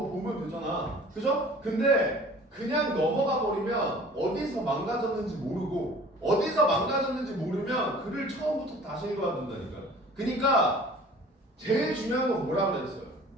보면 되잖아. 그죠? 근데 그냥 넘어가 버리면 어디서 망가졌는지 모르고 어디서 망가졌는지 모르면 글을 처음부터 다시 읽어야 된다니까. 그러니까 제일 중요한 건 뭐라 그랬어요?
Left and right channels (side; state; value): both; normal; correlation 0.47